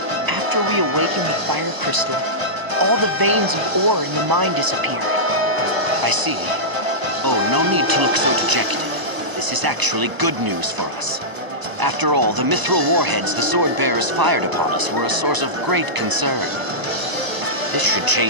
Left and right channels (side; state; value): left; late; 1.0 ms